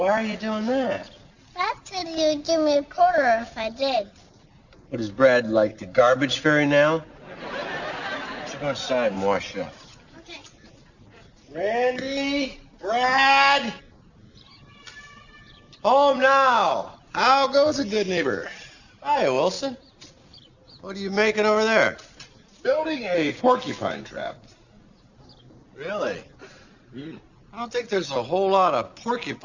are you doing that? Dad said he would give me a quarter if I did. What, is Brad like the garbage fairy now? Let's go inside and wash up. Okay. Randy? Brad? Home now. How goes it, good neighbor? Hi, Wilson. What are you making over there? Building a porcupine trap. Really? I don't think there's a whole lot of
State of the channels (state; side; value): identical; both; correlation 1.00